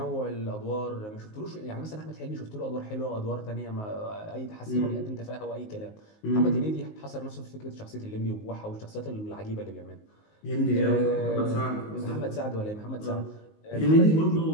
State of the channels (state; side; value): late; right; 19 ms